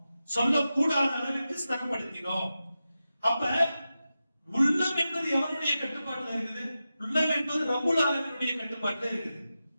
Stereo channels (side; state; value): both; inverted; correlation -0.92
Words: சொல்லக்கூடாத அளவிற்கு ஸ்திரப்படுத்தினோம். அப்ப உள்ளம் என்பது எவனுடைய கட்டுப்பாட்டுல இருக்குது? உள்ளம் என்பது ரப்புல் ஆலமீனுடைய கட்டுப்பாட்டுல இருக்குது.